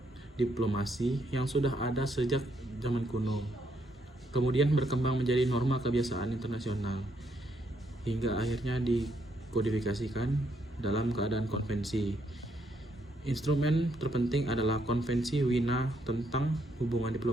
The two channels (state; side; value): normal; both; correlation 0.74